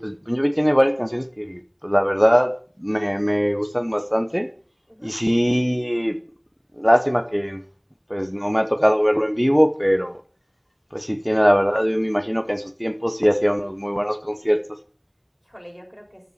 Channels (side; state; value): both; identical; correlation 1.00